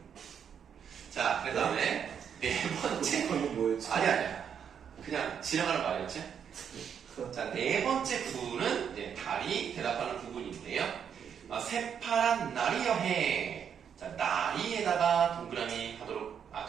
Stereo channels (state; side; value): quieter; left; 7.9 dB